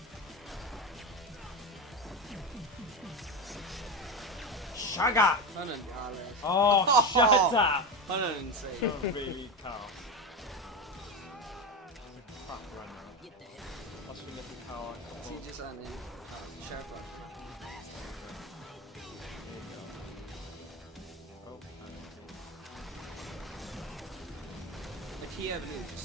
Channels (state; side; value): normal; both; correlation 0.19